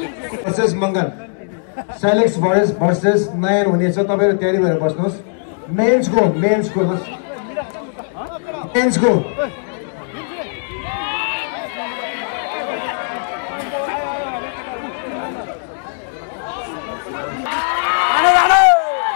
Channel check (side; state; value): right; silent; digital silence